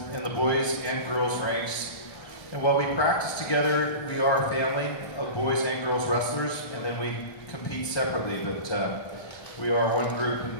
in the boys and girls ranks. And while we practice together, we are a family of boys and girls wrestlers, and then we compete separately, but we are one group,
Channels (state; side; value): late; right; 1.3 ms